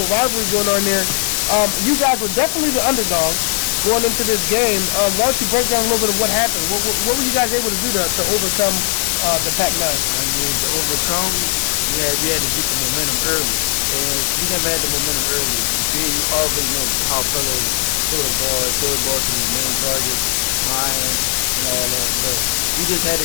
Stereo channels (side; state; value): right; silent; digital silence